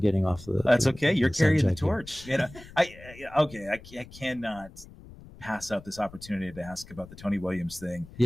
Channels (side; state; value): left; noise; rumble, 19 dB below the sound